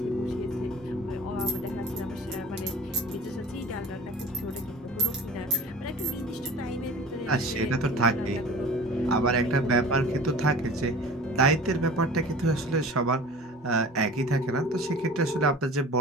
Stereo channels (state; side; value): normal; both; correlation 0.40